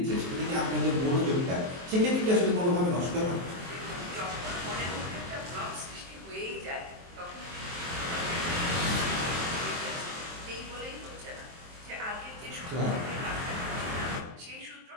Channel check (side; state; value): left; late; 23 ms